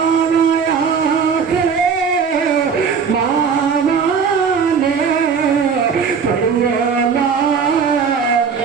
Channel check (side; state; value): left; quieter; 6.1 dB